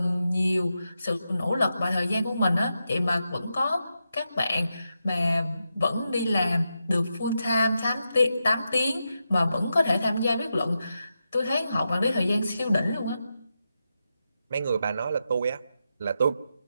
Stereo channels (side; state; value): both; inverted; correlation -0.87